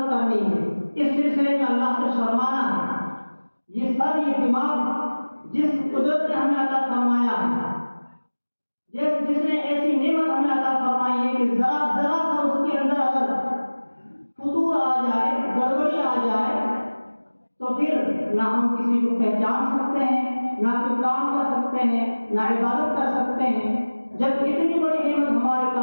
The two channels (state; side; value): inverted; both; correlation -1.00